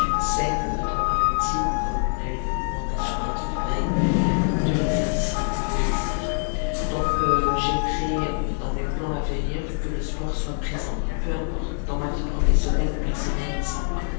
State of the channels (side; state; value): right; silent; 62 dB below the other